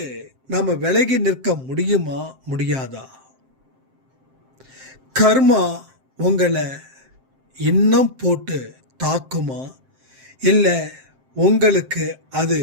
நம்ம விலகி நிற்க முடியுமா முடியாதா? கர்மா உங்களை இன்னும் போட்டு தாக்குமா இல்லை உங்களுக்கு அது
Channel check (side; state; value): left; late; 7.6 ms